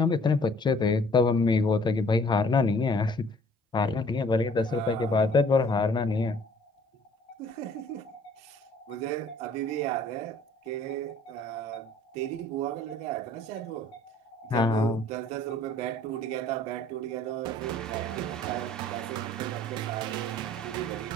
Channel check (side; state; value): both; normal; correlation 0.55